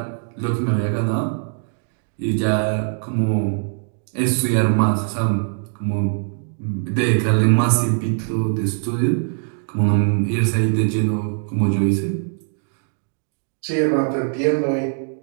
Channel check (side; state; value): left; silent; 56 dB below the other